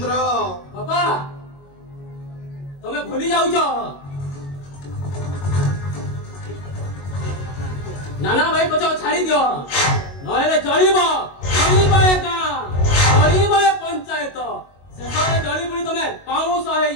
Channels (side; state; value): right; late; 22 ms